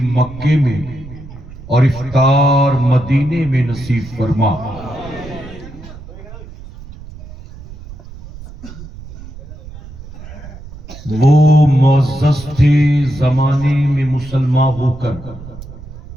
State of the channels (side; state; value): right; noise; rumble, 15 dB below the sound